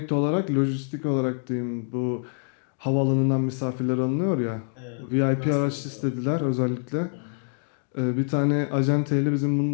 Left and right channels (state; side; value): silent; right; 61 dB below the other